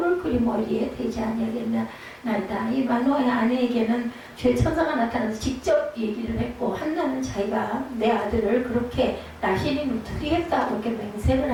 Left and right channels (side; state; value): both; identical; correlation 1.00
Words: 그리 머리에 대지 아니하겠나이다. 이 마노아의 아내에게는 죄 천사가 나타나서 직접 얘기를 했고 한나는 자기가 내 아들을 그렇게 나시린으로 드리겠다 그렇게 맹세를